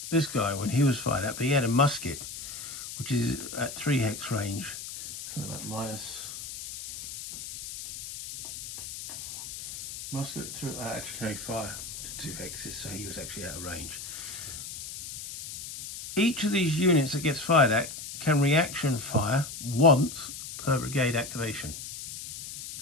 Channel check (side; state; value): left; noise; hiss, 9 dB below the sound